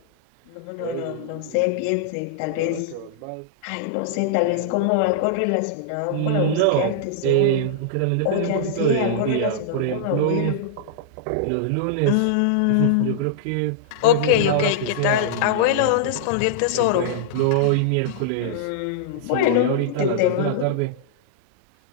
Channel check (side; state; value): both; different; correlation -0.02